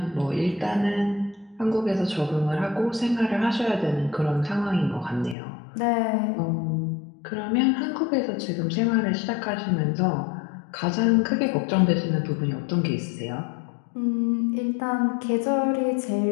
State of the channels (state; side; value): drops out; right; at 5.4 s